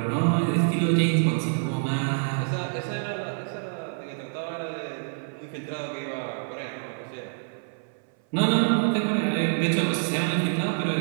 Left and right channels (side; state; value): left; silent; 60 dB below the other